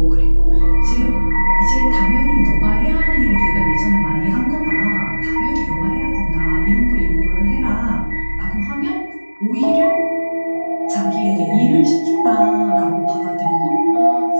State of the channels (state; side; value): inverted; both; correlation -1.00